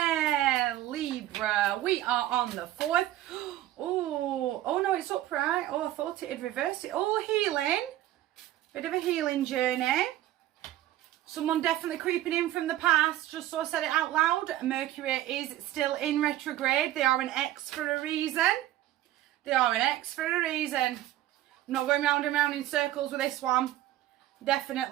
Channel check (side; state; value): left; quieter; 14.1 dB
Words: Libra. We are on the 4th. Oh no, it's upright. Oh, I thought it had reversed it. Oh, healing. Bit of a healing journey. Someone definitely creeping in from the past, just so I said it out loud. Mercury is still in retrograde. They are an X for a reason. They are an X for a reason. I'm not going round and round in circles with this one.